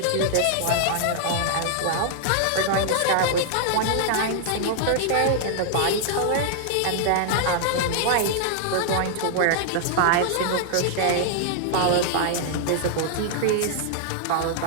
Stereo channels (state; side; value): different; both; correlation -0.01